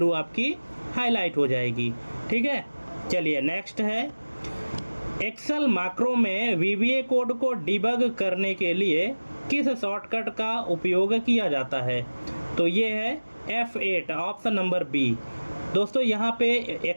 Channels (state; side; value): inverted; both; correlation -1.00